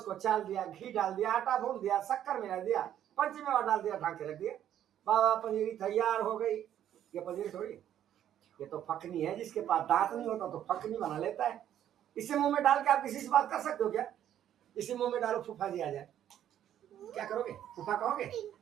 चाल दिया, घी डाल दिया, आटा भून दिया, शक्कर मिला दिया, पंचमेवा डाल दिया, ढाक के रख दिया, बाबा पंजीरी तैयार हो गई। ये पंजीरी थोड़ी, ये तो फकनी है। जिसके पास दांत नहीं होता तो फकनी बना लेता है। इसे मुंह में डाल के आप किसी से बात कर सकते हो क्या? इसी मुंह में डालो, फूफा जी आ जाए, क्या करोगे? फूफा कहोगे?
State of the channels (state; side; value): quieter; left; 10.8 dB